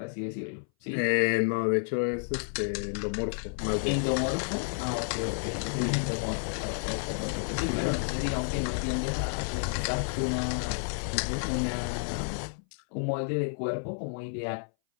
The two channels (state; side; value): silent; right; 57 dB below the other